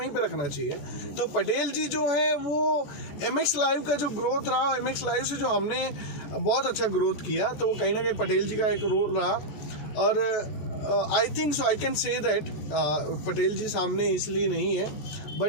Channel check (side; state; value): right; late; 14 ms